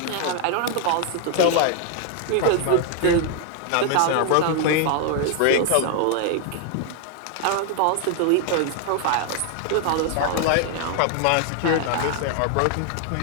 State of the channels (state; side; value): different; both; correlation 0.00